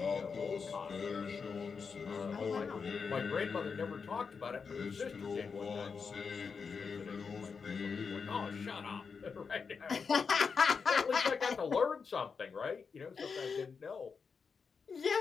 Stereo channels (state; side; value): quieter; right; 5.5 dB